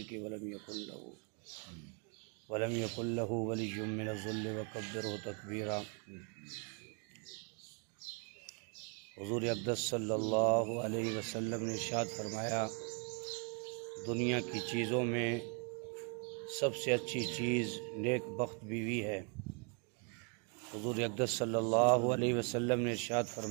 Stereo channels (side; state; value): left; quieter; 36.2 dB